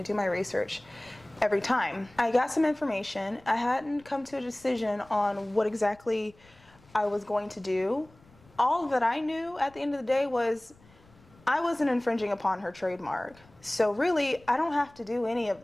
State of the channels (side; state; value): left; noise; rumble, 28 dB below the sound